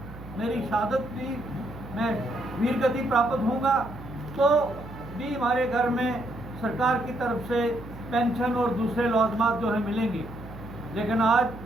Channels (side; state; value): right; noise; hum, 15 dB below the sound